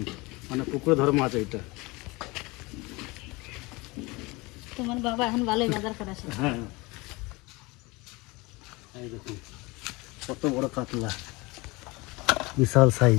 মানে পুকুরে ধরা মাছ এইটা। তোমার বাবা এখন ভালোই বাজার করে আসে। হ্যাঁ, এই দেখুন কত বড় কাতলা, বিশাল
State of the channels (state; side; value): quieter; right; 24.1 dB